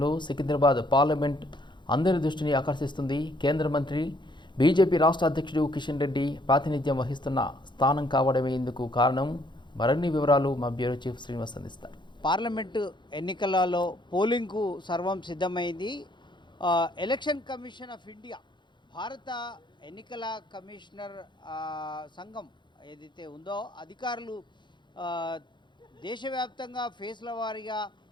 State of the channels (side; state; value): right; late; 0.22 ms